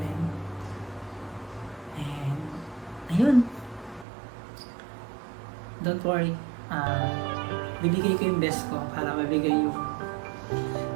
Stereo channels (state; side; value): drops out; left; at 4.0 s